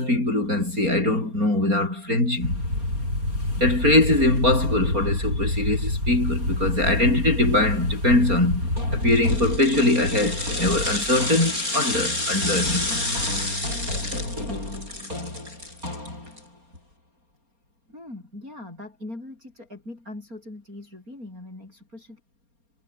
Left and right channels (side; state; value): left; late; 4.3 ms